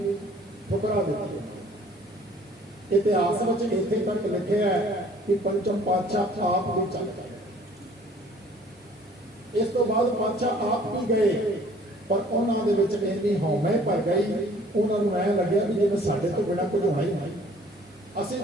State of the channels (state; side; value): normal; both; correlation 0.55